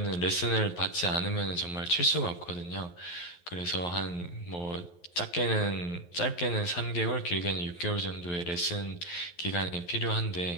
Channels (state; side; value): late; right; 11 ms